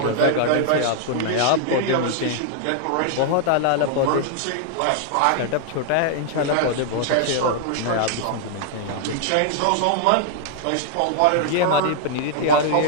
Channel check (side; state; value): both; different; correlation 0.00